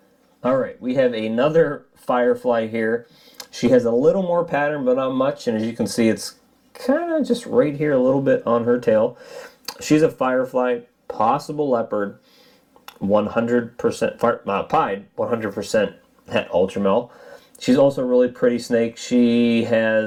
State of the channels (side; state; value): both; identical; correlation 1.00